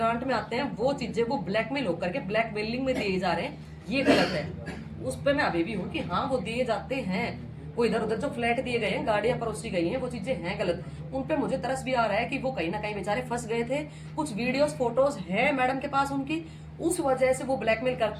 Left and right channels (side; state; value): both; identical; correlation 1.00